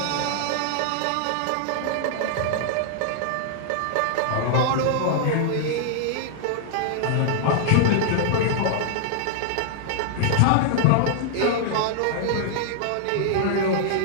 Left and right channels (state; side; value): different; both; correlation -0.01